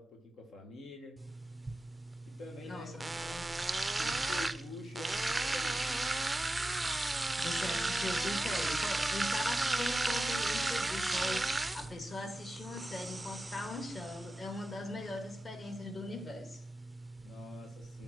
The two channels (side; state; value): both; normal; correlation 0.93